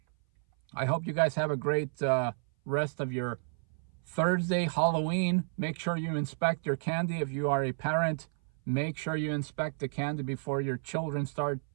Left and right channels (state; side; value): silent; left; 57 dB below the other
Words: I hope you guys have a great rest of your Thursday, Halloween. Make sure you inspect your candy. If you are a parent, make sure you inspect the candy before your children start